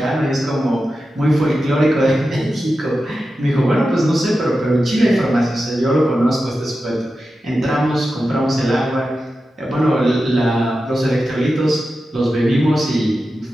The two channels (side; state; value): both; normal; correlation 0.91